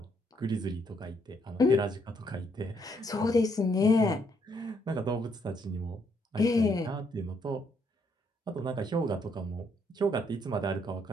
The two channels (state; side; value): normal; both; correlation 0.73